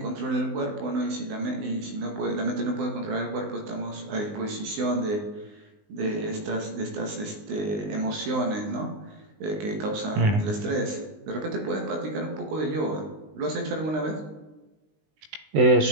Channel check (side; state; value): left; late; 19 ms